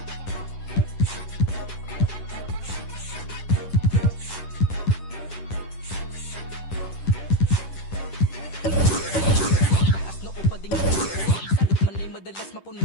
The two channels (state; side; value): late; right; 10 ms